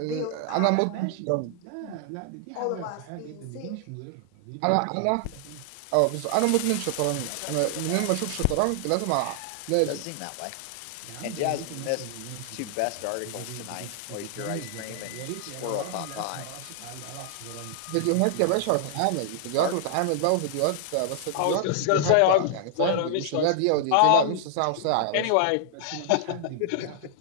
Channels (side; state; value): both; different; correlation -0.01